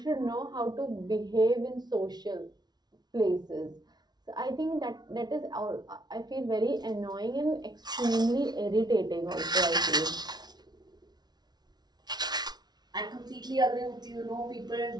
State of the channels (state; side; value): late; left; 0.19 ms